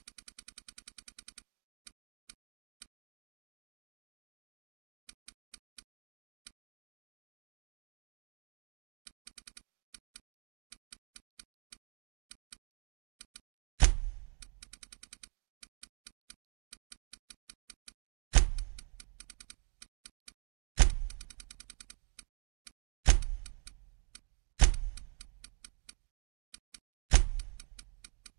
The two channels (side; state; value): left; quieter; 38.3 dB